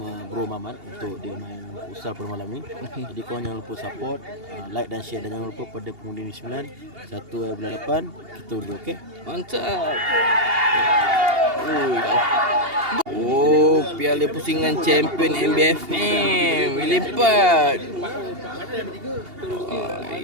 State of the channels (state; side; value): late; left; 2.8 ms